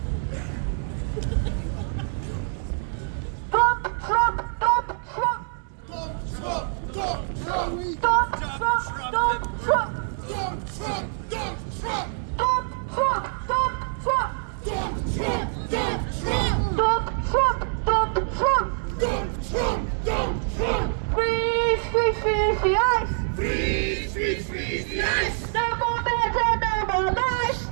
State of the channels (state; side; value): silent; left; 61 dB below the other